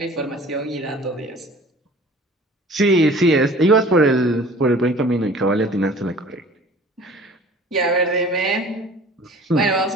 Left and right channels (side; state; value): both; normal; correlation 0.47